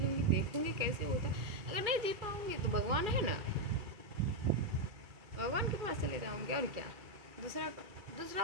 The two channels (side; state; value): left; late; 2.3 ms